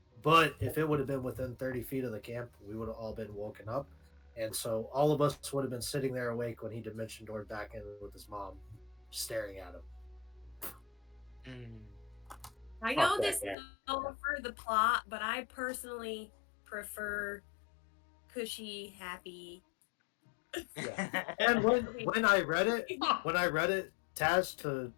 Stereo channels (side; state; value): right; drops out; at 13.6 s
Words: But if it would have been within 30 feet of the camp, we would have all been woken up. And so all of us would have been sitting there awake when he dimension doored back in with his mom, staring at him. I Fuck know that this guy. is all for the plot, but I personally prefer cushy, happy. And when I read it, Taz, to